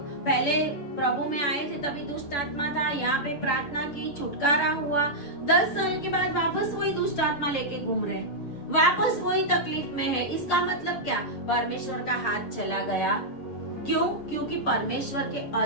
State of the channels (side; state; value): right; late; 7.0 ms